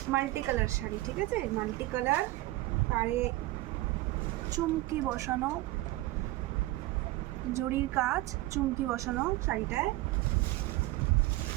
মাল্টি কালার শাড়ি, ঠিক আছে, মাল্টি কালার, পাড়ে চুমকি বসানো, জরির কাজ, চুমকি বসানো শাড়িটায়।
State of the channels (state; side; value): quieter; left; 18.8 dB